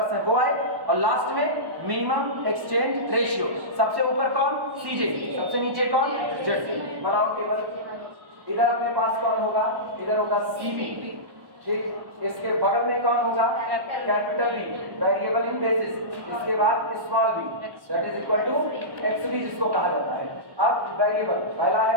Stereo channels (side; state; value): left; late; 1.1 ms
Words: है वो आए, और लास्ट में मिनिमम एक्सचेंज रेशियो। सबसे ऊपर कौन? cj, सबसे नीचे कौन? zj। बनाओ टेबल। इधर अपने पास कौन होगा? इधर होगा cb, ठीक। इसके बगल में कौन होगा? Capital B variable in basis. इसके बाद small b that is equal to xb जिसको कहा जाता है। अब वेरिएबल पहला है